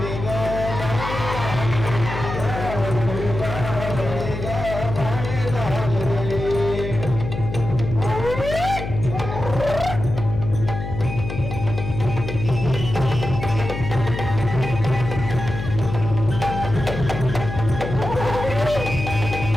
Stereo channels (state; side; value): noise; left; hum, 6 dB below the sound